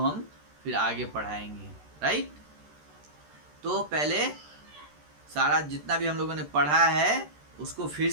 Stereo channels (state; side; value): late; left; 14 ms